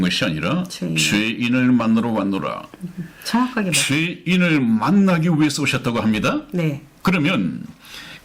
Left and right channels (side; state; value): both; identical; correlation 1.00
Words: 것이 아니라 죄인을 만나러 왔노라. 정확하게 죄인을 만나기 위해서 오셨다고 합니다. 네. 그러면